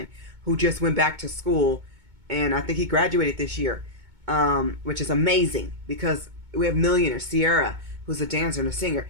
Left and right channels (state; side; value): late; left; 2.2 ms